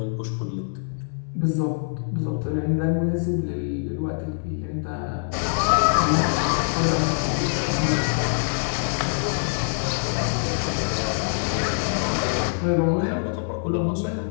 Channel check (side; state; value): right; silent; 61 dB below the other